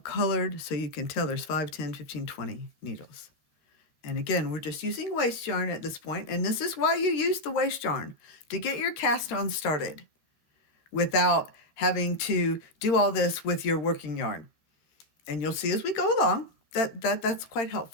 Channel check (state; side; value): late; right; 13 ms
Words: so you can tell there's 5, 10, 15, 20 needles. And again, we're just using waste yarn at this point, and this is why you use the waste yarn, to get your cast on started without having to do all this with your working yarn. And you'll see as we go along that's quite